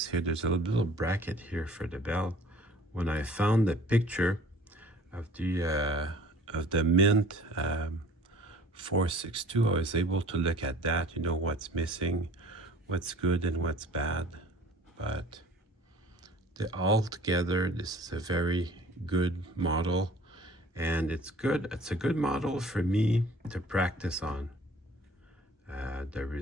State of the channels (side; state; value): both; normal; correlation 0.50